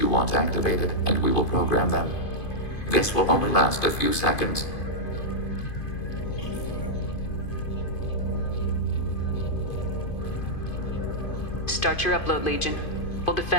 want activated, and we will program them. This will only last a few seconds. Start your upload, Legion. We'll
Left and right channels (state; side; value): late; right; 2.5 ms